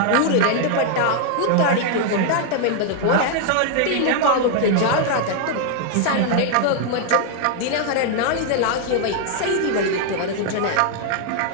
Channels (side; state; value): both; different; correlation 0.00